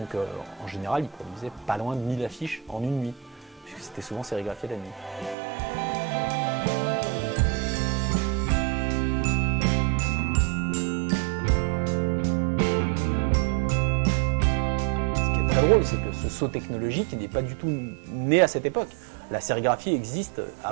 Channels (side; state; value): left; drops out; at 5.4 s